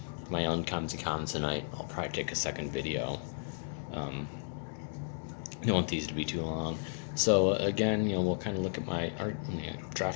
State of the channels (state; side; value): silent; right; digital silence